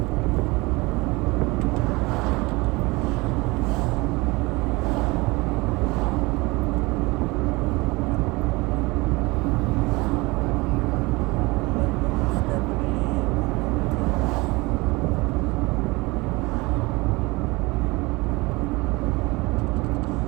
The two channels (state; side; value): quieter; left; 23.8 dB